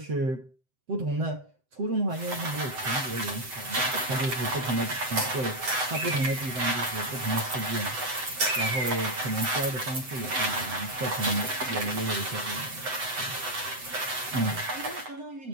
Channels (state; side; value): late; left; 7.8 ms